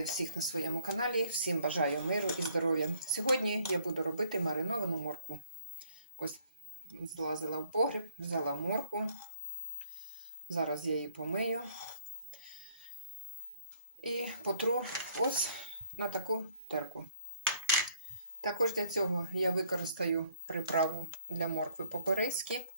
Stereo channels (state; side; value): inverted; both; correlation -0.61